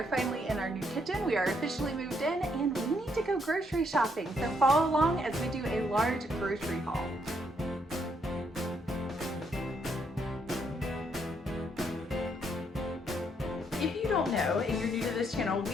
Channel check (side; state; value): both; normal; correlation 0.74